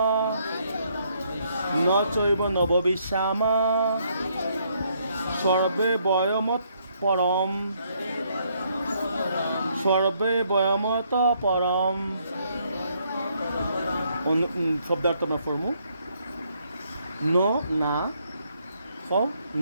ন চৈব নববিশ্যাম সর্বে বয়মত পরম সর্বে বয়মত পরম শব্দার্থ আমরা ফর্মু ন না সব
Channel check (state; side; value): inverted; both; correlation -0.71